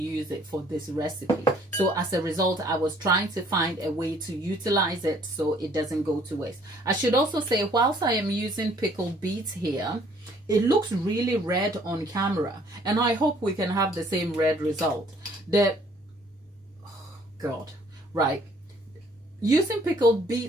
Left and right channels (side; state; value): both; normal; correlation 0.60